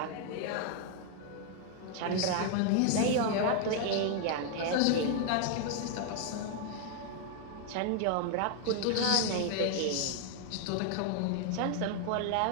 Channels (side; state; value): both; different; correlation 0.00